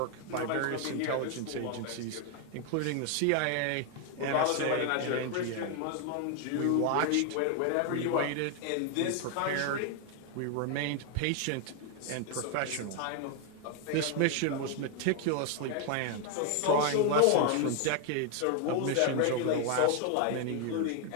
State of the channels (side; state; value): both; different; correlation 0.00